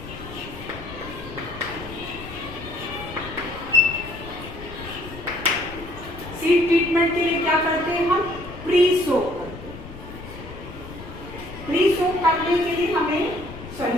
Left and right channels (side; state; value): left; noise; rumble, 13 dB below the sound